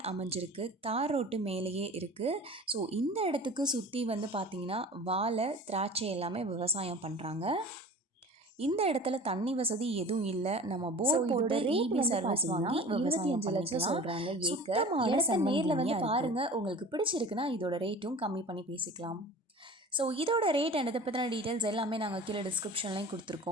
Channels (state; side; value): normal; both; correlation 0.40